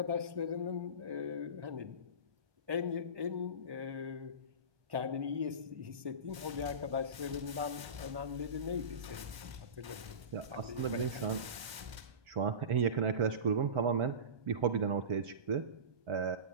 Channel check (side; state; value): left; late; 1.1 ms